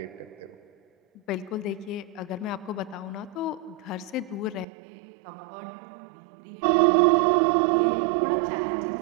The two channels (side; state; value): left; drops out; at 4.7 s